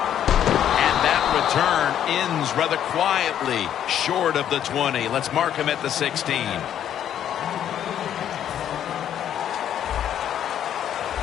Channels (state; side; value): quieter; right; 10.2 dB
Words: And that return ends rather quietly short of the 20. Let's mark him at the 16.